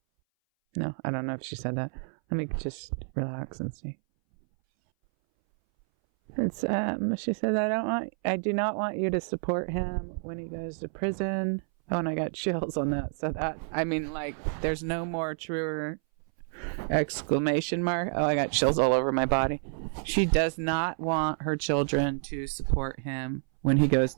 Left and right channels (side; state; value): left; silent; 59 dB below the other